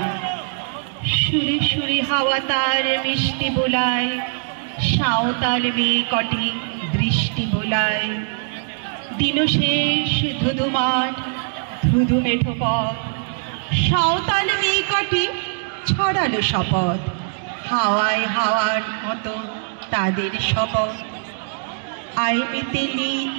সুরে সুরে হাওয়া তার মিষ্টি বোলায়, সাঁওতাল মেয়ে কটি দৃষ্টি বোলায়। দিন শেষ ধুধু মাঠ ধুধু মেঠো পথ, সাঁওতাল মেয়ে কটি ছড়ালো শপথ। হাওয়ায় হাওয়ার মতো তাদের শপথ। আয় মিতেলি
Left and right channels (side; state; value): left; silent; digital silence